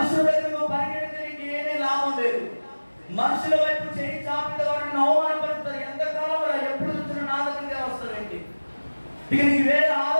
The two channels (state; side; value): inverted; both; correlation -1.00